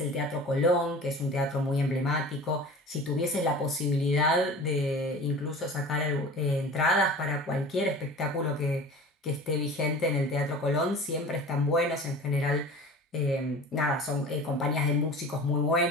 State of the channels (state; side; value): normal; both; correlation 0.39